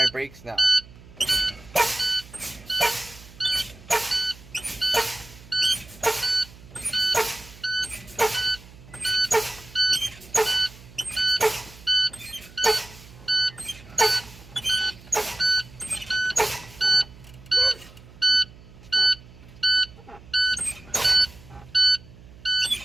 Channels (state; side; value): noise; right; hum, 21 dB below the sound